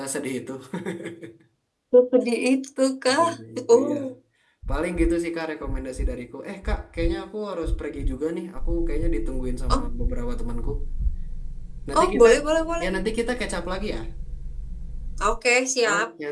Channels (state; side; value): identical; both; correlation 1.00